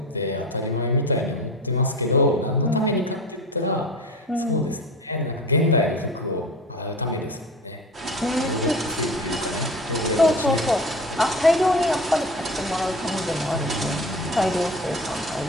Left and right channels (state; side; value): normal; both; correlation 0.34